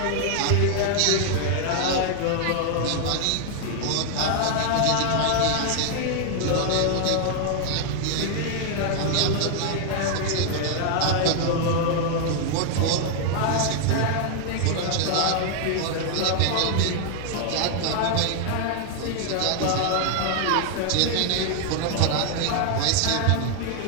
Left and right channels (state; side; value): different; both; correlation 0.00